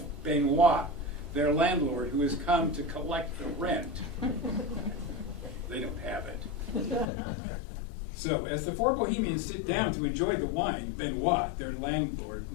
Benoit, their landlord, who has come to collect the rent. They don't have it. So, as the four Bohemians sit down to enjoy the wine, Benoit, their landlord,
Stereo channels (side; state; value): right; drops out; at 7.1 s